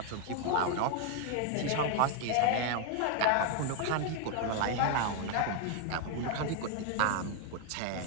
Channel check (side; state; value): both; different; correlation 0.00